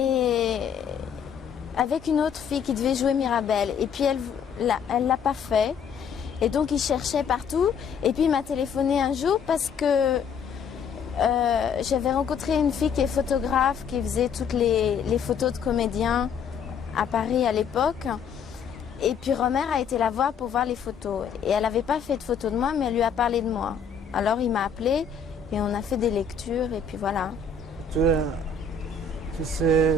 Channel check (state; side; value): quieter; right; 6.1 dB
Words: avec une autre fille qui devait jouer Mirabelle. Et puis elle l'a pas fait. Et donc il cherchait partout. Et puis il m'a téléphoné un jour parce que j'avais rencontré une fille qui est photographe, qui faisait toutes les photos de comédiens à Paris à l'époque. Et puis Romer a été la voir pour voir les photos. Et elle n'avait pas fait de photos de moi, mais elle lui a parlé de moi. Alors il m'a appelé et on a fait des lectures et puis voilà. Tu es